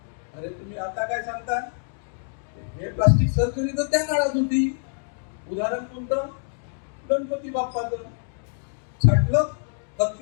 अरे तुम्ही आता काय सांगता, हे प्लास्टिक सर्जरी तर त्या काळात होती. उदाहरण कोणतं, गणपती बाप्पाचं छाटलं,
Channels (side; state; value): right; silent; digital silence